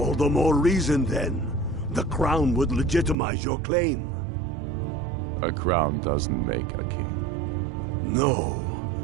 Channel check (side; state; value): left; drops out; at 3.2 s